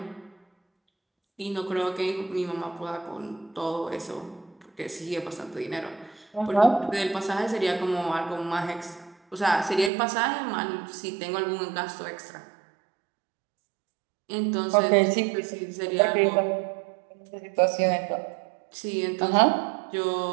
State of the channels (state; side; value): drops out; left; at 9.9 s